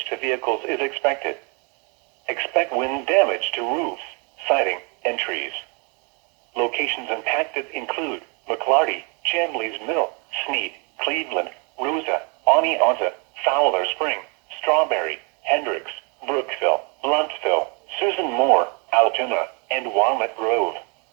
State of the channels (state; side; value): quieter; left; 33.4 dB